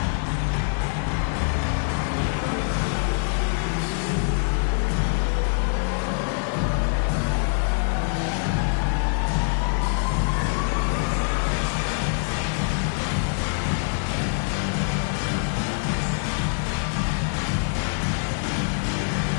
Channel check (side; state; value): right; silent; digital silence